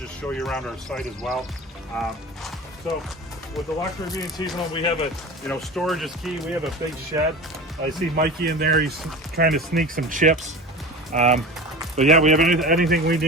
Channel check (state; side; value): normal; both; correlation 0.32